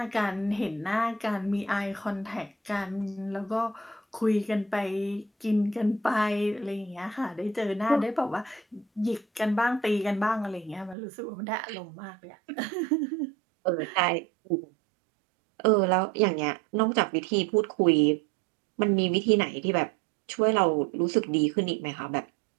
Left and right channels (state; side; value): drops out; left; at 11.0 s